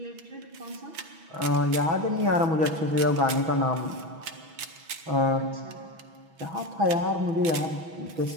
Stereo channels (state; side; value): late; left; 6.2 ms